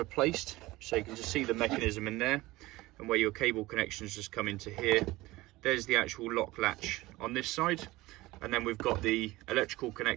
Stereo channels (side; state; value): left; quieter; 19.2 dB